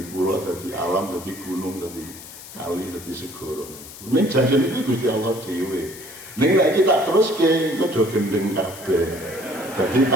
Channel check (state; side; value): noise; left; hiss, 15 dB below the sound